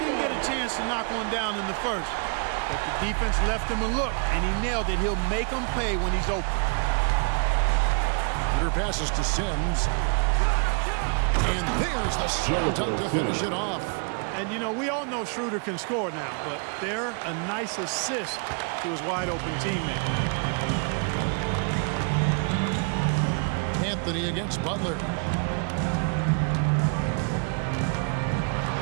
get a chance to knock one down in the first. But the defense left him a look, and he nailed it. He'll make them pay when he's open. Schroeder passes to Sims. And there's the slam dunk to finish it off. And, you know, we all know Schroeder can score now, but they're a nice assist to his wide-open teammate. Anthony against Butler.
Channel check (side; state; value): left; quieter; 38.6 dB